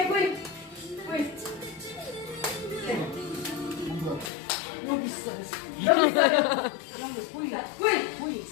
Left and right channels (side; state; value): right; drops out; at 4.3 s